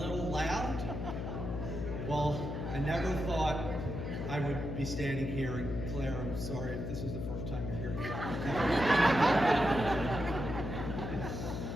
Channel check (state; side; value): noise; left; hum, 4 dB below the sound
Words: loud. Well, I never thought I would be standing here, and Claire, I'm sorry if this is the first time you're hearing about